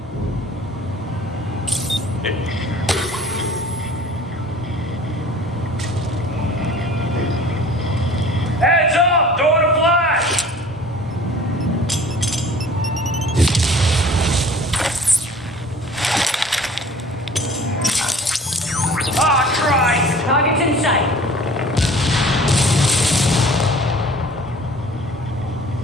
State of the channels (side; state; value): both; normal; correlation 0.48